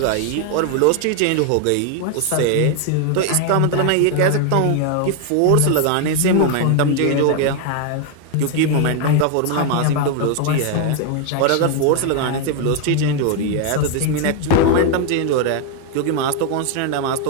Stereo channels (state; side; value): different; both; correlation 0.01